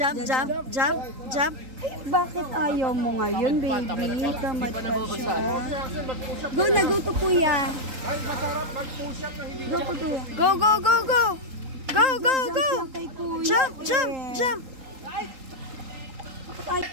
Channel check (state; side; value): late; left; 3.8 ms